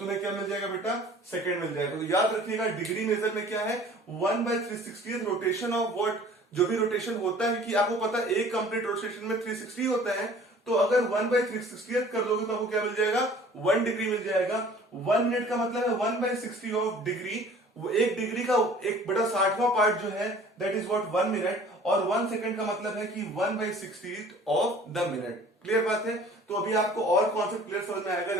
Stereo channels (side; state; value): both; normal; correlation 0.49